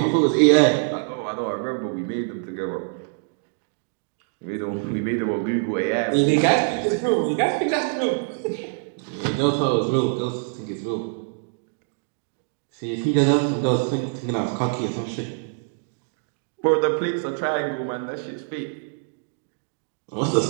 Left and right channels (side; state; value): left; silent; digital silence